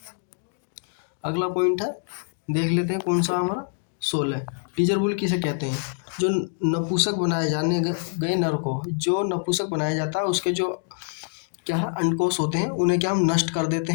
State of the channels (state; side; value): silent; right; digital silence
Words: अगला पॉइंट है, देख लेते हैं कौन सा हमारा, 16, टीजर बुल किसे कहते हैं, जो नपुंसक बनाए जाने गए नर को, जो नपुंसक बनाया जाता है उसके जो क्या है अंडकोश होते हैं उन्हें क्या हम नष्ट कर देते